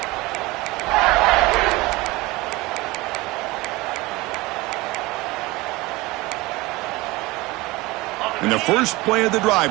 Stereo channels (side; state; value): left; quieter; 21.5 dB